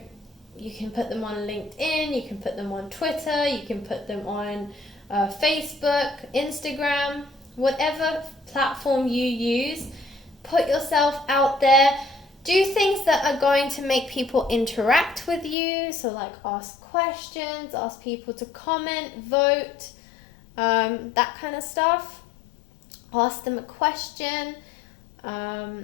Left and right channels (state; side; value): drops out; right; at 15.6 s